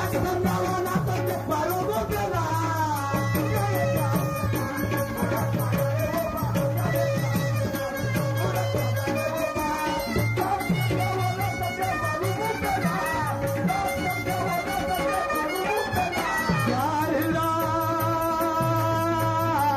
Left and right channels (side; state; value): both; identical; correlation 1.00